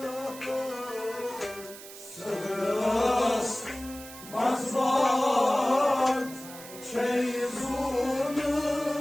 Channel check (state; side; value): noise; right; hiss, 15 dB below the sound